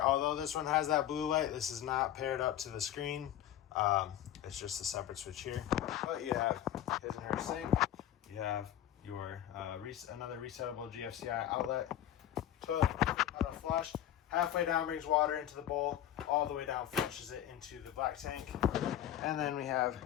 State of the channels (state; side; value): quieter; right; 11.5 dB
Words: Although this one has that blue light, this is not paired up to the screen. It's just a separate switch here. But you have his and her sink. You have your another resettable GFCI outlet. Toilet auto flush. Halfway down brings water into the bowl. All the way down flushes it into the black tank. And then we